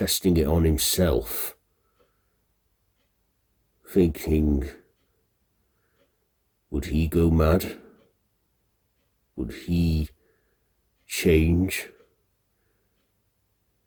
it on himself, thinking, would he go mad? Would he change?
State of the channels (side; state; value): both; identical; correlation 1.00